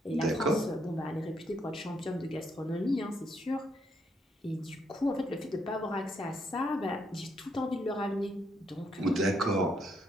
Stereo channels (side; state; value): both; normal; correlation 0.74